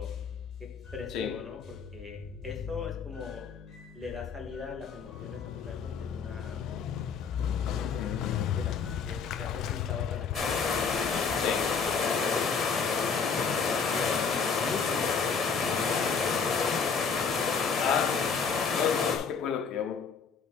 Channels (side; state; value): right; quieter; 5.7 dB